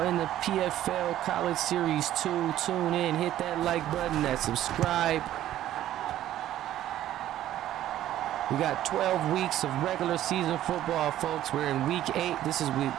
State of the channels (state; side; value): quieter; left; 12.8 dB